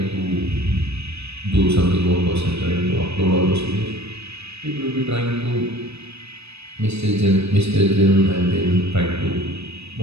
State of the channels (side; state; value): left; late; 0.79 ms